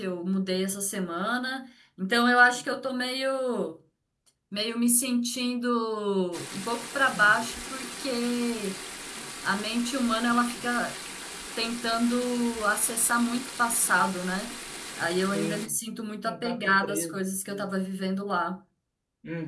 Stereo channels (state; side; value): identical; both; correlation 1.00